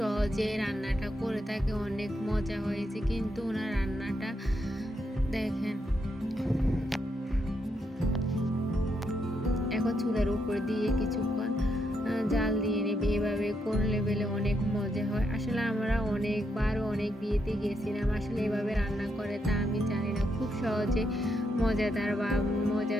রান্নাটা করে থাকে, অনেক মজা হয়েছে কিন্তু ওনার রান্নাটা দেখেন। এখন চুলার উপর দিয়ে কিছুক্ষণ জাল দিয়ে নেবে। এভাবে করলে বেলে অনেক মজা হয়। আসলে আমরা অনেকবার অনেক বিয়েতে গেছিলাম, আসলে এভাবে রান্না করে তা আমি জানি না। খুব সহজে মজাদার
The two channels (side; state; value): both; normal; correlation 0.80